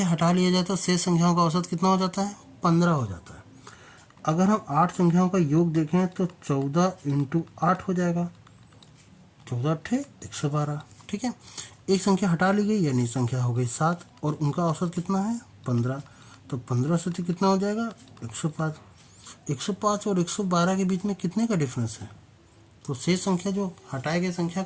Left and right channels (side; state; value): both; identical; correlation 1.00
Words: हटा लिया जाए तो शेष संख्याओं का औसत कितना हो जाता है 15 हो जाता है। अगर हम 8 संख्याओं का योग देखें तो 14 × 8 हो जाएगा, 14 8 112। ठीक है, एक संख्या हटा ली गई यानी संख्या हो गई 7 और उनका औसत कितना है 15, तो 15 से तो कितना हो जाएगा 105। 105 और 112 के बीच में कितने का डिफरेंस है, तो शेष संख्या जो हटाई गई संख्या